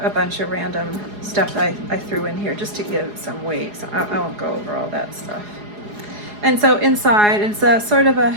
bunch of random stuff that I threw in here just to give it some weight, so I won't go over all that stuff. And so inside, it's a sort of a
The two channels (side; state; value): left; late; 4.8 ms